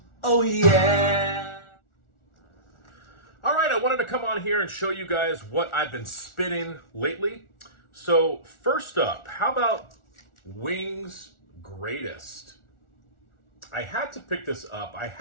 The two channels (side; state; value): right; late; 1.4 ms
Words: Oh yeah! All right, I wanted to come on here and show you guys what I've been spinning lately. So first up, how about Wings Greatest? I had to pick this up. I